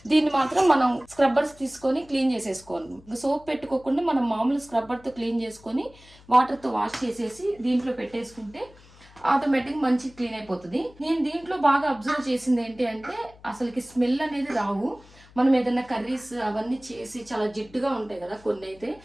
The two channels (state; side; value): noise; left; hum, 24 dB below the sound